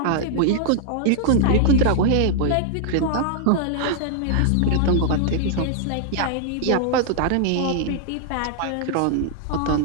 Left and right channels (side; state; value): both; different; correlation 0.00